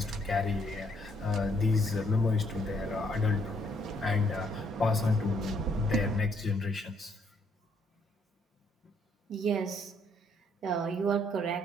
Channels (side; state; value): both; normal; correlation 0.69